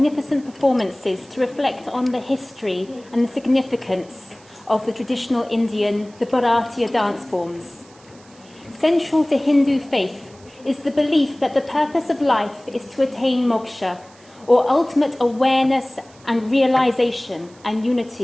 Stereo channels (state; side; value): noise; right; hiss, 27 dB below the sound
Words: performances to reflect on the history and the significance of the traditional Indian, the Bharatiya dance forms. Central to Hindu faith is the belief that the purpose of life is to attain moksha, or ultimate awareness and realization and